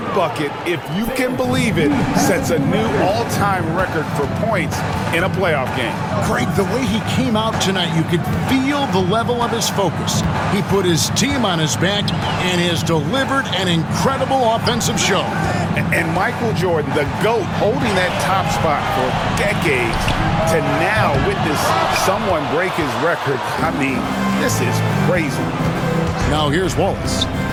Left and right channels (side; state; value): both; identical; correlation 1.00